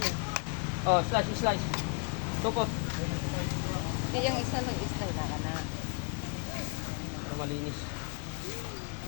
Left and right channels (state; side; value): quieter; right; 33.6 dB